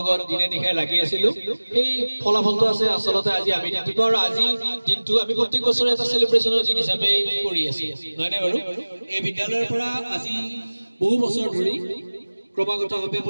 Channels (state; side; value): inverted; both; correlation -1.00